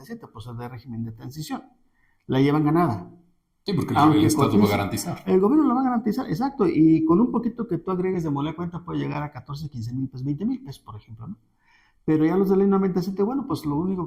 pues es de régimen de transición. La llevan ganada. Sí, porque Aunque el Estado va a cotice, garantizar. el gobierno lo va a garantizar, exacto, y con un poquito que tú agregues de moler cuenta puede llegar a 14, 15 mil pesos, 20 mil pesos, por ejemplo, ¿no? Pero ya los de ley 97, bueno, pues lo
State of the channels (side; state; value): both; identical; correlation 1.00